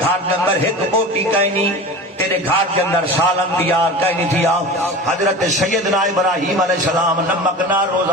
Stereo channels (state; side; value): normal; both; correlation 0.33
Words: دے اندر ایک بوٹی کہیں نہیں، تیرے گھر کے اندر سالن تیار کہیں نہیں تھیا۔ حضرت سیدنا ابراہیم علیہ السلام نمک نہ روزہ